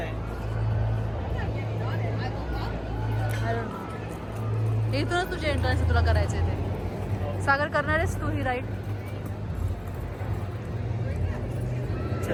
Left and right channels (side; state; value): both; identical; correlation 1.00